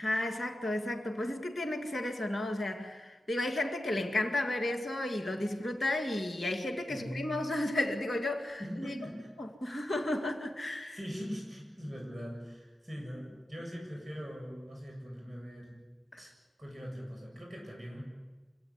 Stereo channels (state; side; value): normal; both; correlation 0.91